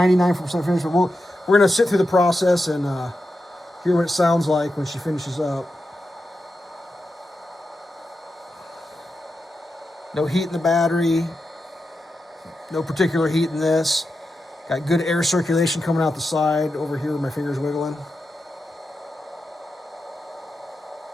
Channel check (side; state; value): both; normal; correlation 0.89